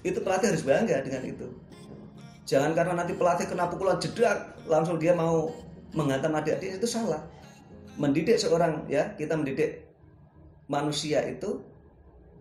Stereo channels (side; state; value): both; identical; correlation 1.00